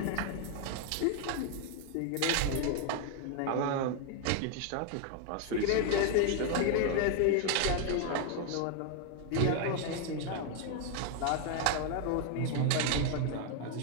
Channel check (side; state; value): both; different; correlation 0.00